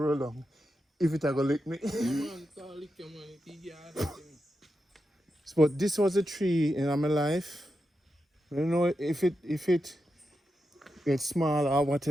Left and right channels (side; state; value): both; normal; correlation 0.88